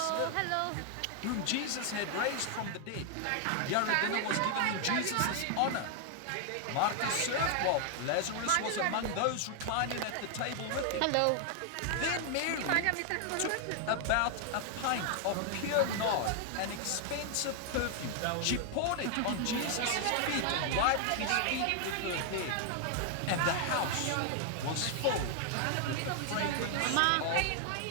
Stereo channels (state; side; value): different; both; correlation 0.00